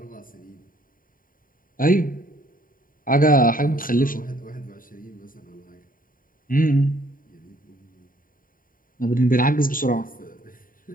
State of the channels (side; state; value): right; late; 0.41 ms